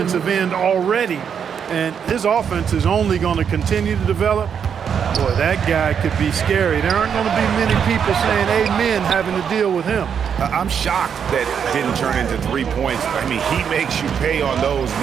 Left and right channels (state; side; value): quieter; left; 7.5 dB